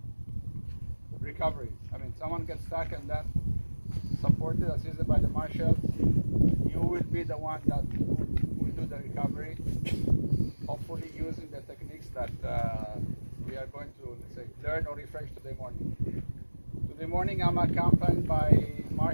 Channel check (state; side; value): inverted; both; correlation -1.00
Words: recovery. I mean, someone gets stuck and then supported, assisted by the marshals. You will be the one that will do the recovery, hopefully using the techniques that we are going to, let's say, learn or refresh today morning. Today morning I'm accompanied by